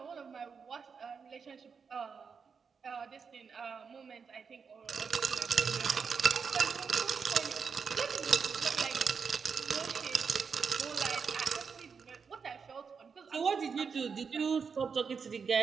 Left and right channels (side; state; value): left; quieter; 5.8 dB